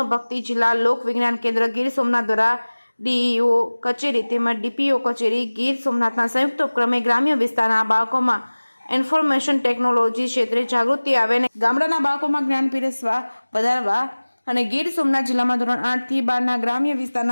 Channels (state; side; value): inverted; both; correlation -1.00